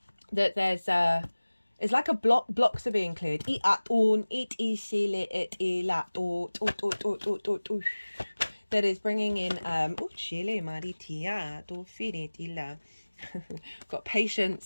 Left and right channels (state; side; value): inverted; both; correlation -1.00